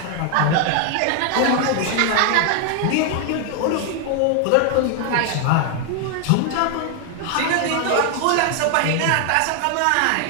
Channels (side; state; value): both; different; correlation 0.00